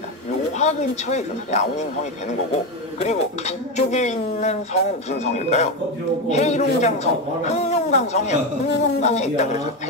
요하 근처에 있어서 랴오닝 성이 되는 거고, 그리고 북쪽에 있는 성은 무슨 성일까요? 헤이룽장성, 흑룡강성이에요. 흑룡강에 있다 그래서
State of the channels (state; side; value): normal; both; correlation 0.14